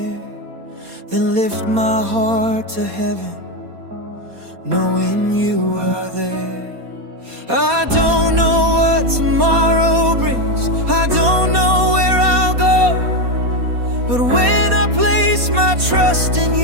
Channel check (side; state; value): left; late; 4.2 ms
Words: then lift my heart to heaven, knowing you are there. I don't know what tomorrow brings, I don't know where I'll go, but when I place my trust in